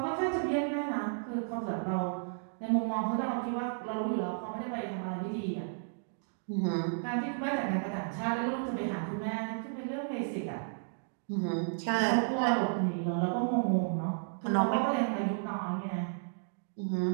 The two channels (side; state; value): left; silent; digital silence